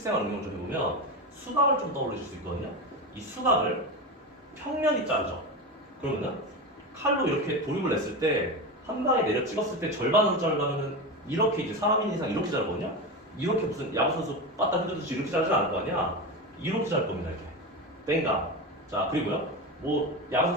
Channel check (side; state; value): both; normal; correlation 0.20